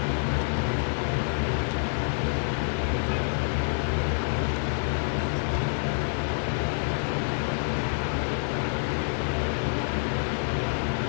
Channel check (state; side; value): silent; right; digital silence